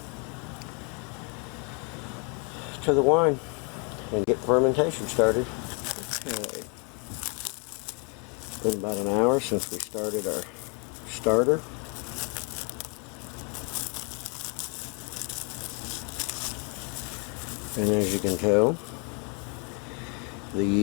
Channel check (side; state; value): right; quieter; 32.2 dB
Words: wine and get fermentation started. Okay. It's been about an hour since we started our starter. And as you can tell, the